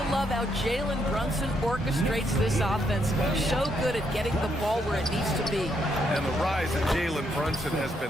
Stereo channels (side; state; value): both; normal; correlation 0.76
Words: love how Jalen Brunson orchestrates this offense. So good at getting the ball where it needs to be. And the rise of Jalen Brunson has